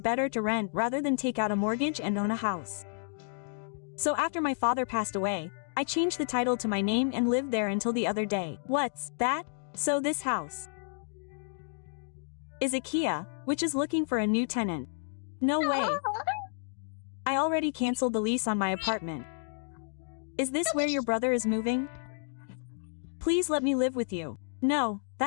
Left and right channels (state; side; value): silent; right; digital silence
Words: to rent rather than take out a mortgage and own a house. So after my father passed away, I changed the title to my name and lived there until the other day. What's that? So this house is IKEA, which is looking for a new tenant. No way. I already canceled the lease on my apartment. Is this where your brother is moving? Please let me live with you. No,